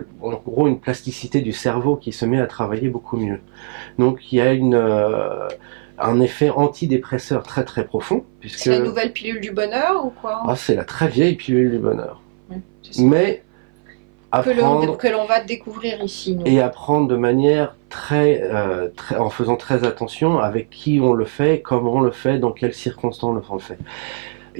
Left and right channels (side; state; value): left; silent; 60 dB below the other